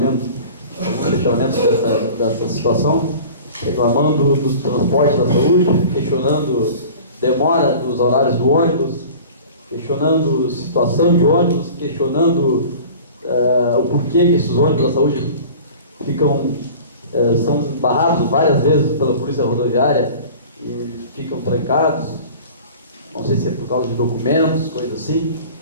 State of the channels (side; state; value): both; inverted; correlation -0.41